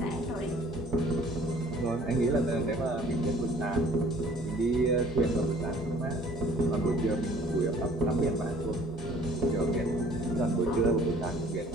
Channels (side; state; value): both; normal; correlation 0.54